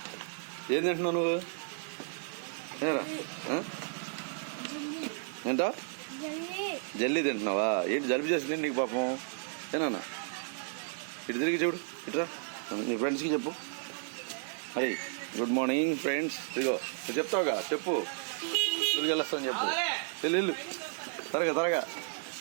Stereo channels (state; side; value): silent; left; digital silence